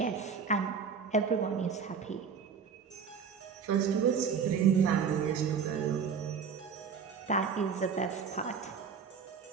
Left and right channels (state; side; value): quieter; left; 6.4 dB